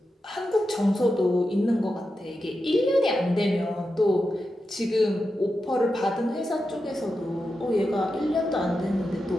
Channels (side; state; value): both; normal; correlation 0.89